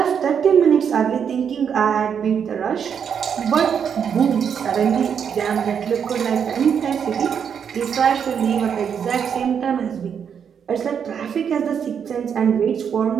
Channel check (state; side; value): quieter; left; 7.5 dB